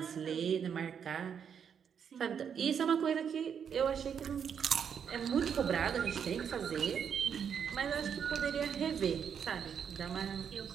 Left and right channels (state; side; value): quieter; left; 7.6 dB